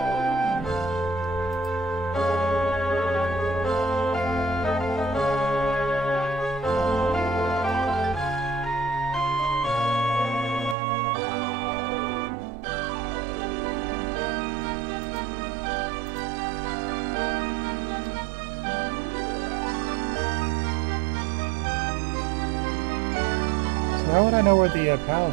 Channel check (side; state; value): left; drops out; at 10.8 s